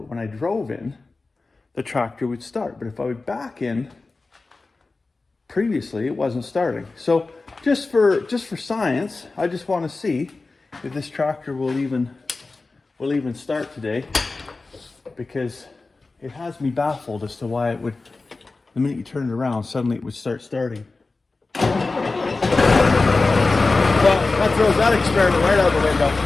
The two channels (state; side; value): quieter; right; 3.6 dB